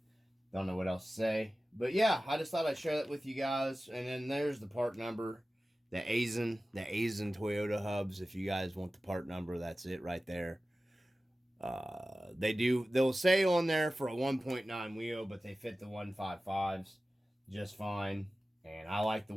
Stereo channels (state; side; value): normal; both; correlation 0.96